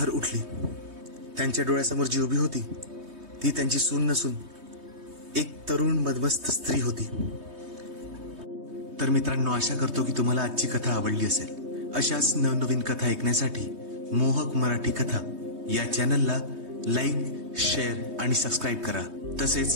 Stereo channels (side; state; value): left; late; 3.2 ms